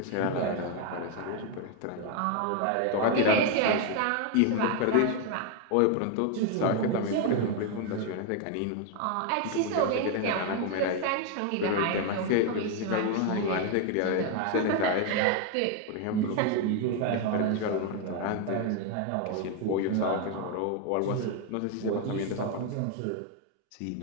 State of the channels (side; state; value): both; different; correlation 0.01